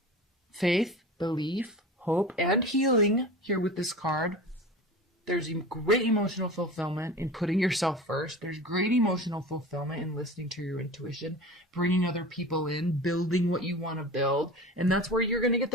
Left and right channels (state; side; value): normal; both; correlation 0.34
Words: faith, belief, hope, and healing here with this card. There's great emotional fulfillment in putting yourself first. There's great emotional fulfillment in listening to your intuition, bringing other people in, building what you want to build. And that's where you're going to get